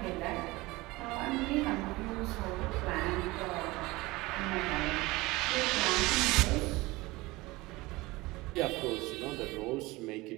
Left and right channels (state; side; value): quieter; left; 21.1 dB